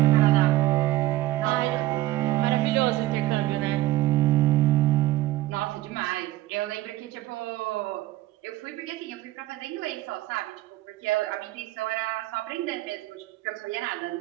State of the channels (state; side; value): quieter; left; 16.3 dB